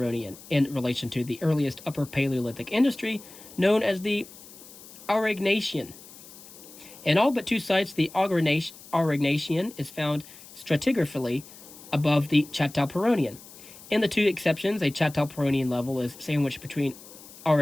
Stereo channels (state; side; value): noise; left; hiss, 19 dB below the sound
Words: in relation to the earliest Upper Paleolithic industry, known as the Aurignacian. In all but two sites, the Aurignacian is found stratigraphically above the Châtelperronian. In the two exceptions, a Châtelperronian level is sandwiched between